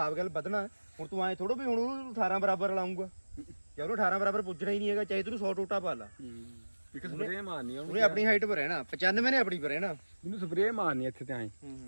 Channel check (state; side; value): inverted; both; correlation -1.00